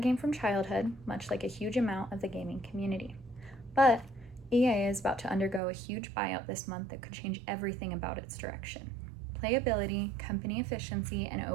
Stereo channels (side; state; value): left; drops out; at 5.6 s